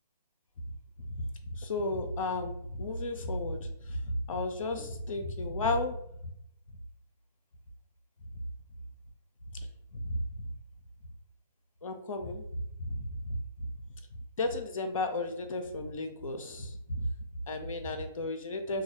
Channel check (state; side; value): inverted; both; correlation -0.53